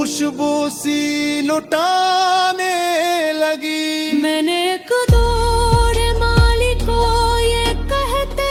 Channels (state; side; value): identical; both; correlation 1.00